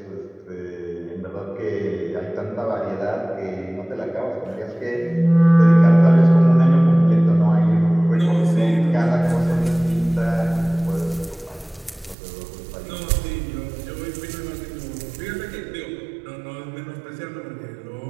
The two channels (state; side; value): drops out; left; at 12.2 s